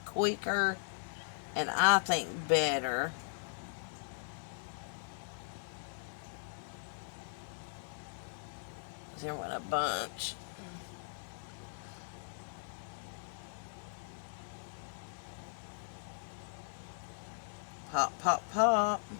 quicker and I think better. There went a bunch. Pop, pop, pop.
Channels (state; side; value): silent; right; 52 dB below the other